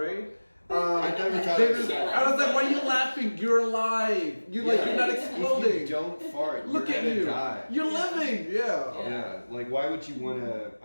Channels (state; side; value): inverted; both; correlation -1.00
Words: I never thought They of just, that. I was like, why are you laughing? You're alive. You're like, you're not exploding. If you don't fart, Look you're at gonna you. die. You're living. Yeah. Yeah. Like, why would you want to?